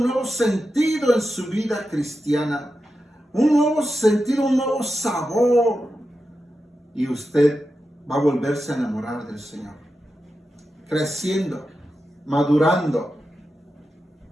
nuevo sentido en su vida cristiana. Un nuevo sentido, un nuevo sabor. Y usted va a volverse a enamorar del Señor. Creciendo, madurando.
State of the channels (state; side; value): normal; both; correlation 0.90